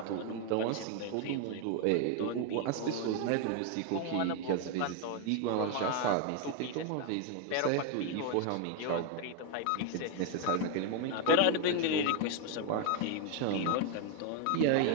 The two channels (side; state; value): both; different; correlation 0.01